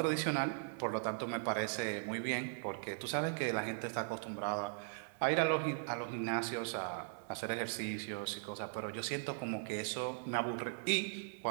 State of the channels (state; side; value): silent; left; 52 dB below the other